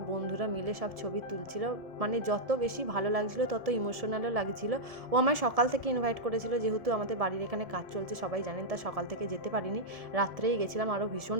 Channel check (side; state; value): left; late; 1.7 ms